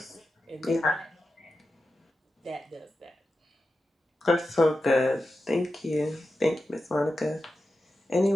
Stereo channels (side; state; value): both; normal; correlation 0.91